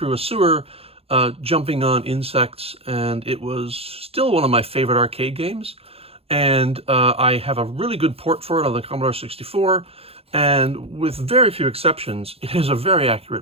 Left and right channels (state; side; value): late; left; 0.28 ms